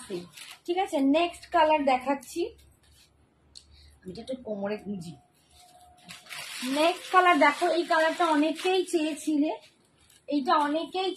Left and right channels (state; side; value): identical; both; correlation 1.00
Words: ফ্রি, ঠিক আছে? নেক্সট কালার দেখাচ্ছি, আমি একটু কোমরে গুঁজি। নেক্সট কালার দেখো, এই কালারটা অনেকেই চেয়েছিলে, এইটা অনেকেই